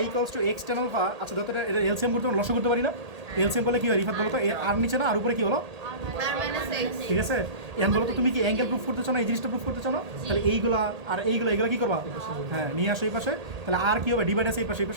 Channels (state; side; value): late; left; 1.8 ms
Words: equals to x tan alpha, আচ্ছা যত এটা এলসিএম করতে লসও করতে পারি না, এলসিএম করলে কি হয় রিফাত বলো তো, আর নিচে না আর উপরে কি হলো, ঠিক আছে? এখন বলো তো তুমি কি অ্যাঙ্গেল প্রুফ করতে চাও না এই জিনিসটা প্রুফ করতে চাও না, তাহলে এইগুলা আর এইগুলা কি করবা, হ্যাঁ নিয়ে আসো এই পাশে, তাহলে আর কি হবে ডিভাইড আছে এই পাশে, এই